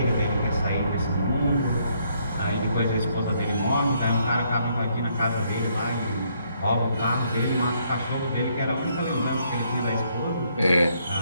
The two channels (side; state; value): both; inverted; correlation -0.71